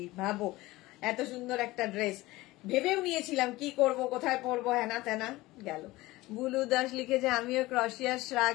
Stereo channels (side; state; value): right; quieter; 19.2 dB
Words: ভাবো এত সুন্দর একটা ড্রেস, ভেবেও নিয়েছিলাম কি করব, কোথায় পরবো, হেনা তেনা গেল। বুলু দাস লিখেছে আমিও ক্রশিয়ার শ্রাগ